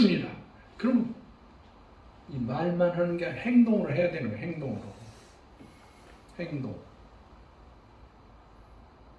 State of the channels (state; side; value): identical; both; correlation 1.00